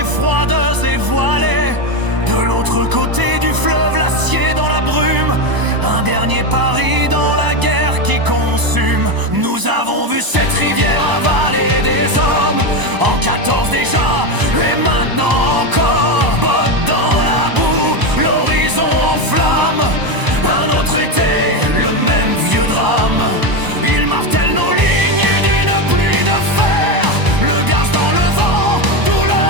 froides et voilées. De l'autre côté du fleuve, l'acier dans la brume, un dernier Paris dans la guerre qui consume. Nous avons vu cette rivière avaler des hommes, en 14 déjà, et maintenant encore. Bottes dans la boue, l'horizon en flammes, un autre été, le même vieux drame. Ils martèlent nos lignes d'une pluie de fer, le gaz dans le vent,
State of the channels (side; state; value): left; late; 1.0 ms